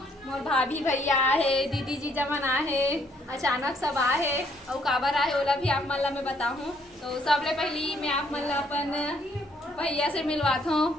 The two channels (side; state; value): both; normal; correlation 0.68